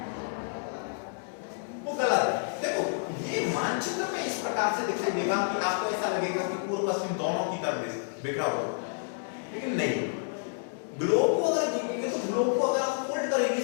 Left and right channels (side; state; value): right; silent; digital silence